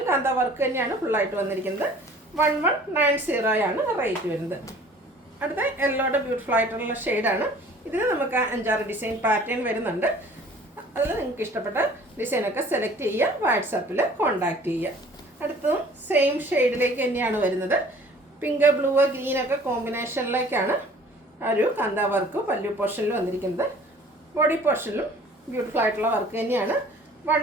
കാന്ത വർക്ക് തന്നെയാണ് ഫുള്ളായിട്ട് വന്നിരിക്കുന്നത്. 1190 റേറ്റ് വരുന്നത്. അടുത്ത യെല്ലോയുടെ ബ്യൂട്ടിഫുൾ ആയിട്ടുള്ള ഷെയ്ഡാണ്. ഇതിന് നമുക്ക് 5-6 ഡിസൈൻ പാറ്റേൺ വരുന്നുണ്ട്. അതിൽ നിങ്ങൾക്ക് ഇഷ്ടപ്പെട്ട ഡിസൈനൊക്കെ സെലക്ട് ചെയ്യുക, വാട്സാപ്പിൽ കോൺടാക്റ്റ് ചെയ്യുക. അടുത്തതും സെയിം ഷെയ്ഡിലേക്ക് തന്നെയാണ് വരുന്നത്. പിങ്ക് ബ്ലൂ ഗ്രീനൊക്കെ കോമ്പിനേഷനിലേക്കാണ് ഒരു കാന്ത വർക്ക് പല്ലു പോർഷനിൽ വന്നിരിക്കുന്നത്. ബോഡി പോർഷനിലും ബ്യൂട്ടിഫുൾ ആയിട്ടുള്ള വർക്ക് തന്നെയാണ്.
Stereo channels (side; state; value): both; normal; correlation 0.50